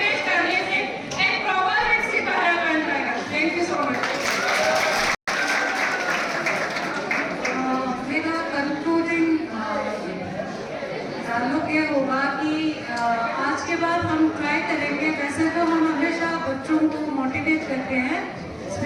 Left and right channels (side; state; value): both; identical; correlation 1.00